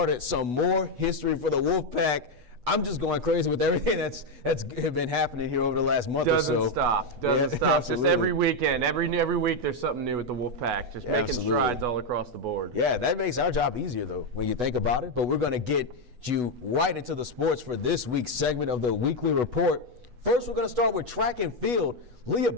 Some more history for the Wolfpack. I'm just going crazy with everything that's been happening here over the last month or so. Doesn't stop. Just every weekend, every week there's something new with the Wolfpack. Just making strides all across the board. Yeah, that makes our job easier though when you think about it. But we're going to get you right into the sports for this week's segment of the Weekly Report. First, we're going to start with track and field. Leah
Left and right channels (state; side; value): late; left; 8.2 ms